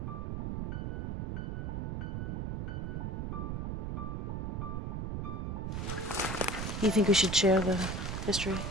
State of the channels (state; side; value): noise; right; rumble, 2 dB below the sound